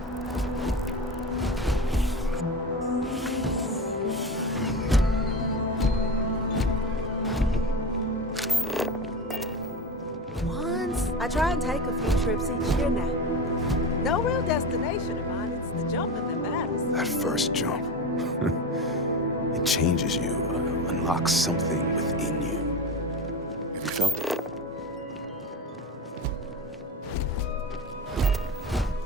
Once, I try and take a few trips each year now. No real destination of mine, it's the jumping that matters. That first jump. It changes you, unlocks something within you. Have you felt it?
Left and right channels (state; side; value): normal; both; correlation 0.24